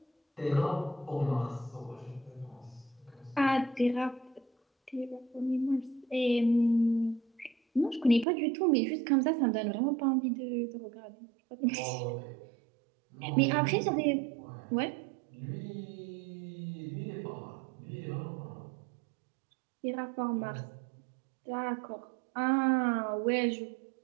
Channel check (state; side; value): drops out; left; at 8.2 s